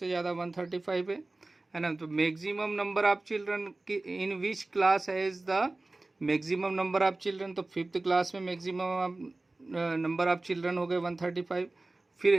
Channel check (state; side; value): quieter; left; 3.0 dB